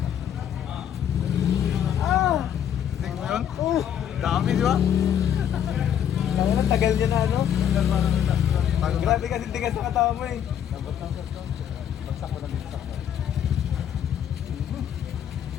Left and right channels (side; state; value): right; quieter; 9.5 dB